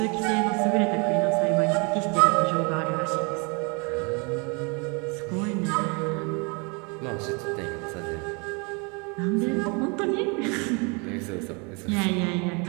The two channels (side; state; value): left; quieter; 31.9 dB